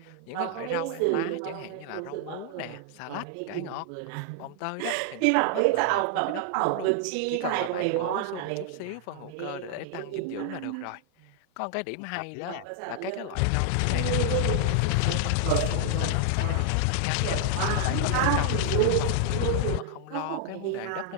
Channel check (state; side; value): different; both; correlation 0.00